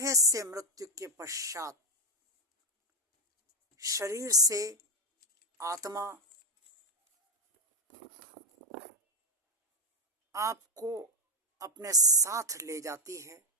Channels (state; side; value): normal; both; correlation 0.05